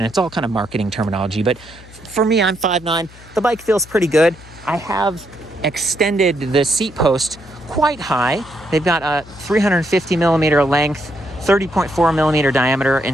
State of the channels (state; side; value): noise; left; hum, 21 dB below the sound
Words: It's all kind of marketing terminology, but for me, I'm 5'9". The bike feels pretty good. I have extended the seat post quite high. They've got a 350 millimeter length, 30.4 millimeter diameter